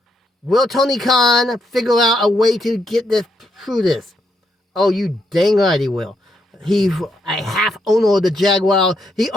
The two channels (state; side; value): normal; both; correlation 0.78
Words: Will Tony Khan figure out a way to get this through this? Oh, you dang right he will. He's a half owner of the Jaguar. He